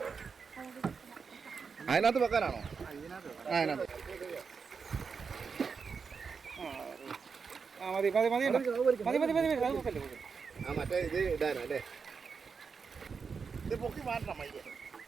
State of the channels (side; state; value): left; quieter; 5.5 dB